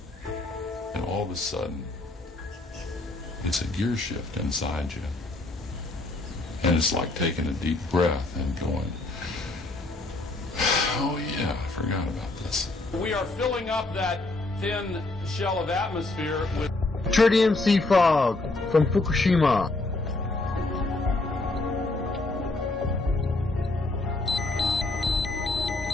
And all of a sudden, it's a gear shift inside you. And it's like taking a deep breath and going, oh yeah, I forgot about this. We are filling up that thin shell of atmosphere with tritium sea fog from Fukushima.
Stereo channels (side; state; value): right; quieter; 3.0 dB